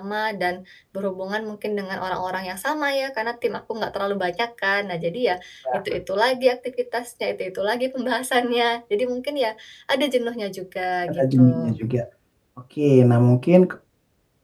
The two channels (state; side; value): identical; both; correlation 1.00